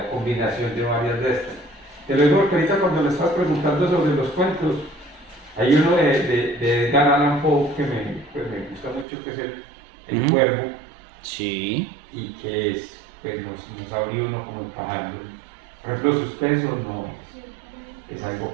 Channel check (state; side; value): drops out; left; at 9.1 s